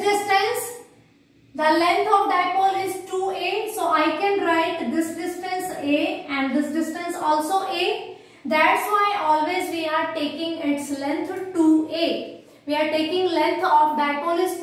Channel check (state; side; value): identical; both; correlation 1.00